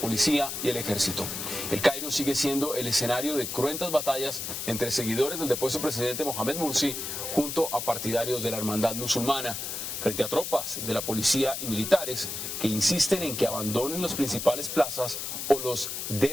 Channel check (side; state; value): left; noise; hiss, 5 dB below the sound